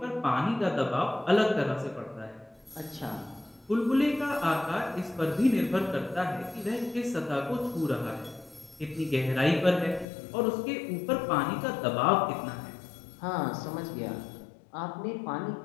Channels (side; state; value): right; drops out; at 10.1 s